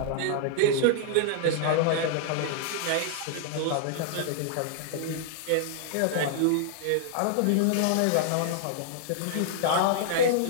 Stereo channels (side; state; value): both; different; correlation -0.01